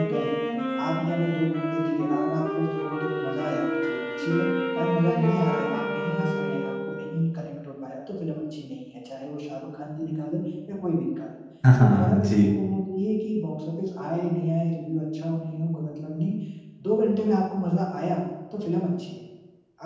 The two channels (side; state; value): both; identical; correlation 1.00